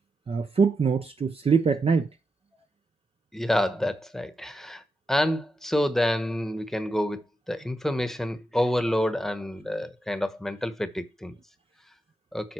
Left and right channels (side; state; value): both; normal; correlation 0.86